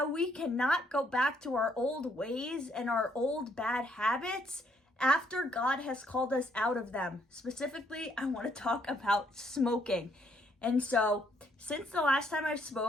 we cannot go back to our old ways and our old bad habits after God has called us out of them. Specifically, I want to talk about smoking. And so, since the last time I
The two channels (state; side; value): normal; both; correlation 0.70